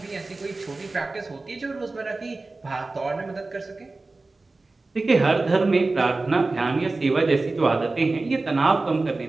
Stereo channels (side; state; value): left; quieter; 3.4 dB